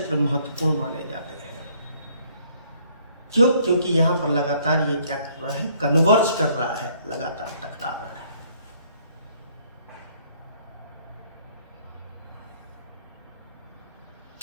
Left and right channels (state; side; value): inverted; both; correlation -0.63